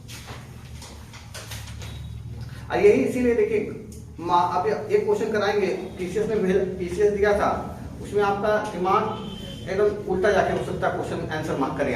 और यही इसीलिए देखिए अब एक क्वेश्चन कराएंगे, पीसीएस में पीसीएस दिया था, उसमें आपका दिमाग एकदम उल्टा जाके हो सकता है, क्वेश्चन आंसर मार्क करें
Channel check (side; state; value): both; identical; correlation 1.00